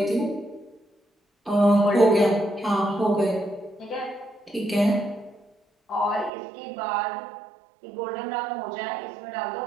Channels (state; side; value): drops out; left; at 6.3 s